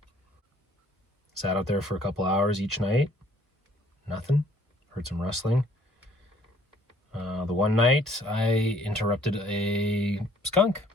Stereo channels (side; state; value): both; normal; correlation 0.60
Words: Sat out there for a couple hours each night. Nothing. Heard some rustling. The one night I interrupted a skunk